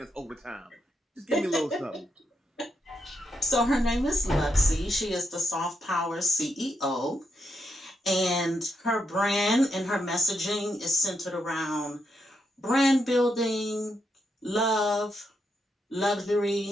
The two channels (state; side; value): normal; both; correlation 0.81